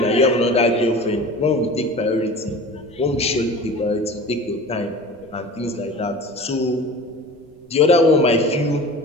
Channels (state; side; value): noise; right; rumble, 28 dB below the sound